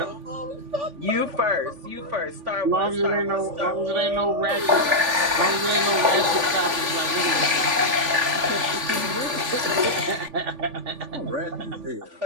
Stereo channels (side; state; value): left; late; 3.5 ms